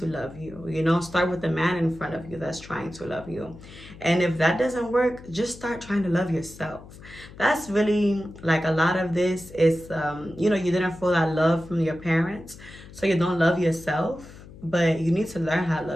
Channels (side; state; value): left; noise; hum, 18 dB below the sound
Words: love you. Start with the man in front of you that's trying to love you. And if that doesn't work, just start trying to love yourself. That's really like a lot of this is, you didn't feel that love from your parents, so you don't love yourself. But you need to learn how to